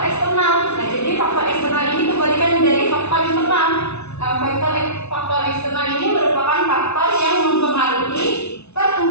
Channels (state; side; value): late; right; 0.81 ms